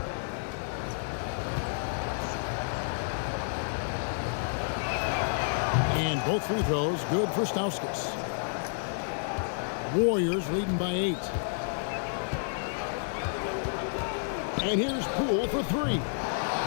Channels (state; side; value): silent; right; digital silence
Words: And both free throws good for Stauskas. Warriors leading by 8. And here's Poole for 3.